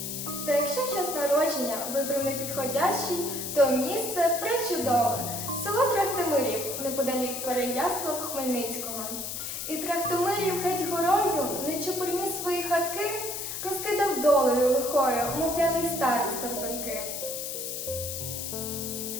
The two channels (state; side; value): noise; left; hiss, 5 dB below the sound